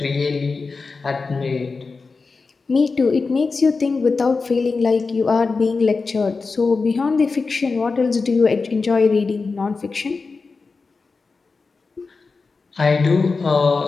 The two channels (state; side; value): quieter; right; 4.3 dB